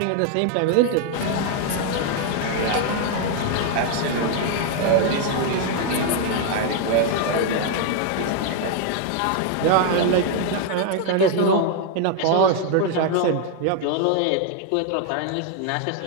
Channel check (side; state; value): both; different; correlation 0.00